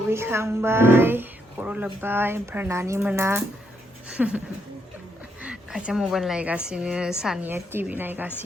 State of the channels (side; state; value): both; normal; correlation 0.77